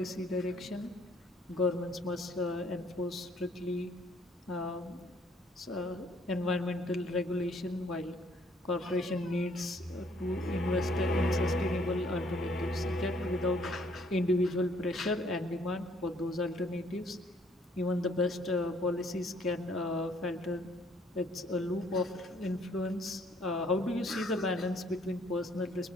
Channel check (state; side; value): normal; both; correlation 0.63